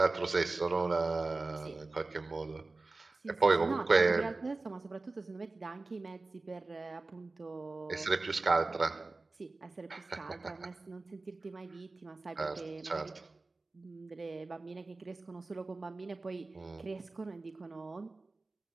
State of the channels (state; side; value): quieter; left; 3.4 dB